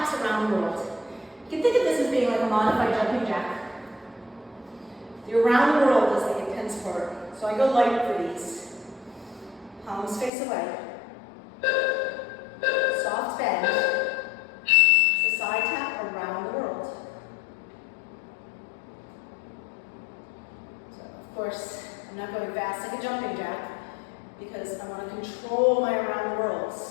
around the world. You can think of this as being like a modified jumping jack. The around the world is the intense part. So I go light for these. Palms face away. Soft bend. So side tap around the world. So of course, I'm not going fast like a jumping jack because I want to control my around the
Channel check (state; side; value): drops out; right; at 10.3 s